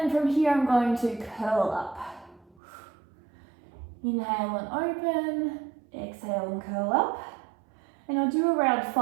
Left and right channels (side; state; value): left; drops out; at 2.6 s